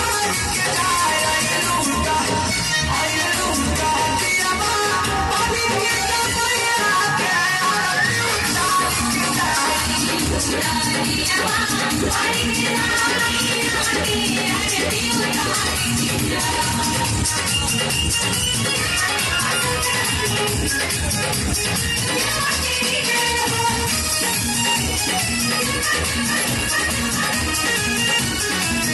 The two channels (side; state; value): both; identical; correlation 1.00